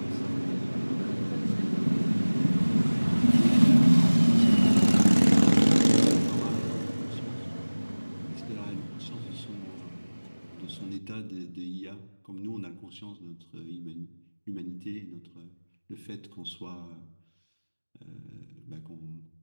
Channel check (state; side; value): inverted; both; correlation -1.00